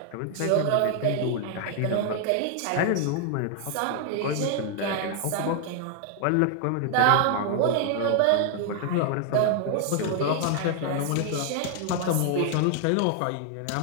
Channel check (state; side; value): different; both; correlation 0.00